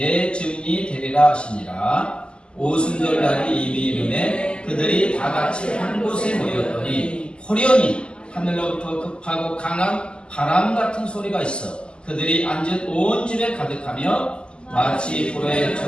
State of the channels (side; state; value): right; late; 0.050 ms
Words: 증인이 되리라 하시니라. 오순절날이 이미 이름에 그들이 다같이 한 곳에 모였더니 호련히 하늘로부터 급하고 강한 바람 같은 소리가 있어 그들이 앉은 온 집에 가득하며 마치